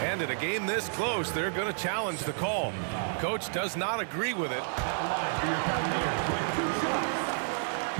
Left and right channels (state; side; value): silent; left; digital silence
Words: it. A game this close, they're going to challenge the call. Coach does not agree with it.